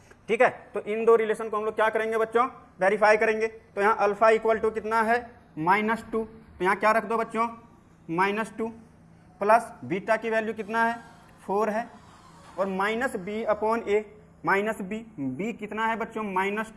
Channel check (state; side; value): identical; both; correlation 1.00